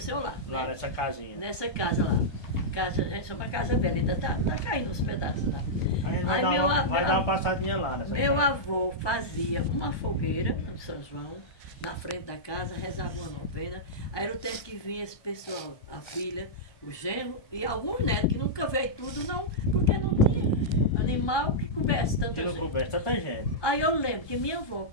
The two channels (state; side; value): late; right; 1.2 ms